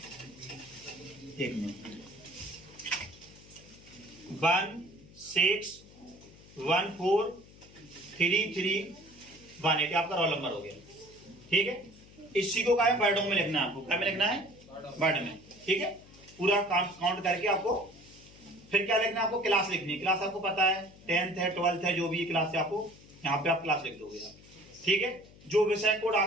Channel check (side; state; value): left; noise; hum, 22 dB below the sound